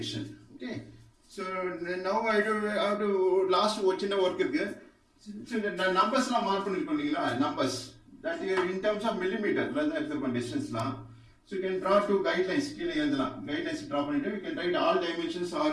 Okay. So now I have to last watch in the work irukku. So the numbers la mark பண்ணிருக்கீங்களா, numbers that in terms of millimeter la எடுத்துக்கோங்க distance la. So you can draw two guidelines கீழ எழுதலாம். Guidelines draw பண்ணிட்டு you can write all dimensions are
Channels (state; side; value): identical; both; correlation 1.00